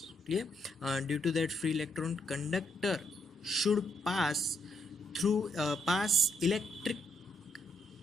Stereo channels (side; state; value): both; normal; correlation 0.76